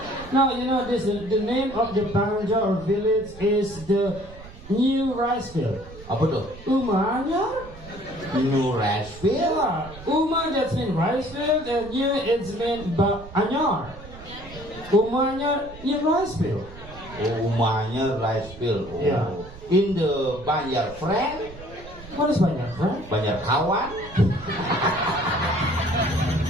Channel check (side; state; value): right; noise; rumble, 17 dB below the sound